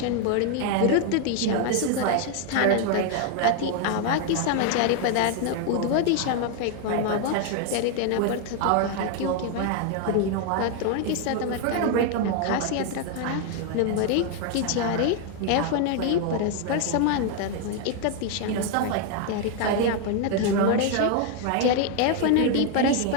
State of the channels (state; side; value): different; both; correlation 0.01